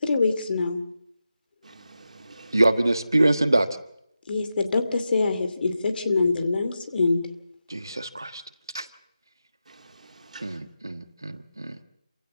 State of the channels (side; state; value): both; inverted; correlation -0.90